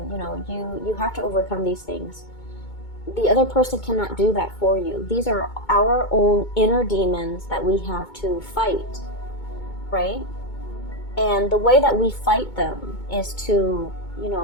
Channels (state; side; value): late; right; 2.2 ms